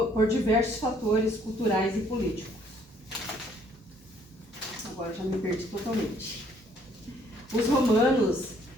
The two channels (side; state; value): both; normal; correlation 0.63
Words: por diversos fatores culturais e políticos. Agora já me perdi totalmente. Os romanos